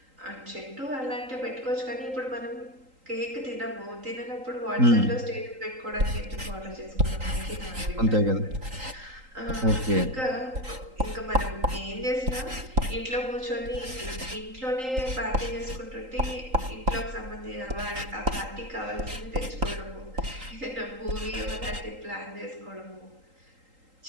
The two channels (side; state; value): left; late; 3.8 ms